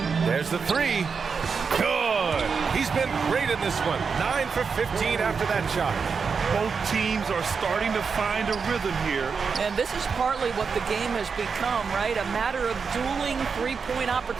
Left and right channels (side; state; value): left; quieter; 5.6 dB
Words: There's the 3. Good. He's been great in this one. 9 for 15 after that shot. Both teams are starting to find a rhythm here. And this is partly what the game has become, right? A matter of dueling three-point